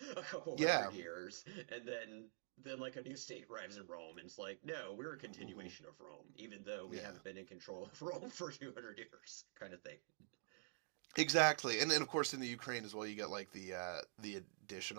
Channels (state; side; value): silent; left; digital silence